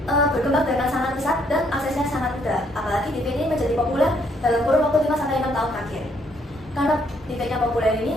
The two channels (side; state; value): both; normal; correlation 0.69